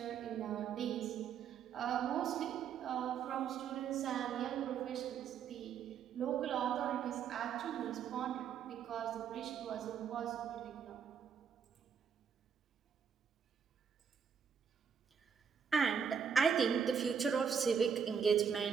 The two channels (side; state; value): left; quieter; 7.2 dB